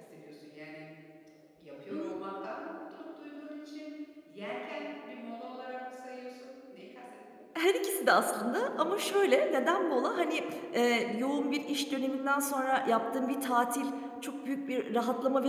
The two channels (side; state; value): both; identical; correlation 1.00